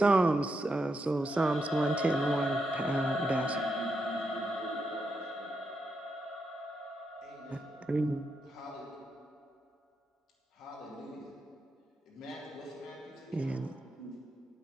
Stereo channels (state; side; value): normal; both; correlation 0.83